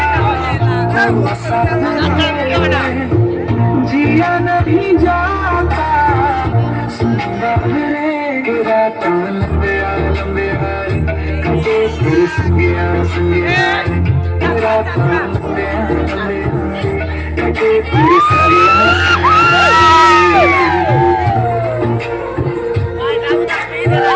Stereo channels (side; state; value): both; identical; correlation 1.00